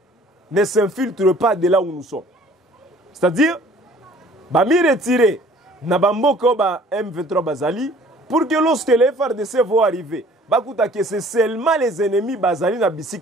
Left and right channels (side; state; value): both; normal; correlation 0.53